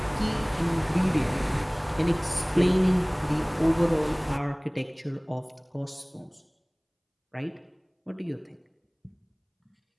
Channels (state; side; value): identical; both; correlation 1.00